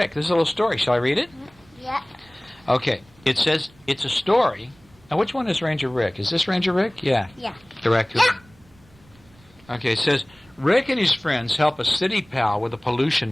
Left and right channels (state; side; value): noise; right; rumble, 29 dB below the sound